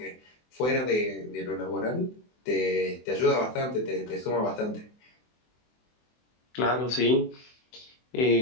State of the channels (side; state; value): right; late; 24 ms